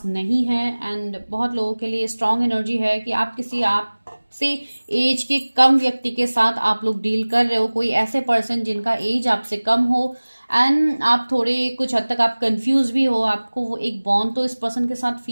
नहीं है। एंड बहुत लोगों के लिए स्ट्रांग एनर्जी है कि आप किसी आपसे एज के कम व्यक्ति के साथ आप लोग डील कर रहे हो, कोई ऐसे पर्सन जिनका एज आपसे कम हो एंड आप थोड़े कुछ हद तक आप कंफ्यूज भी हो। आपको वो एक बॉन्ड तो इस पर्सन के साथ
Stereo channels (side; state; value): both; inverted; correlation -1.00